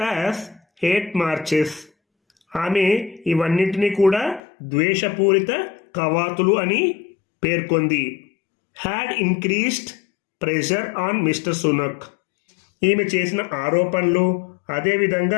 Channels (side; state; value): right; drops out; at 4.4 s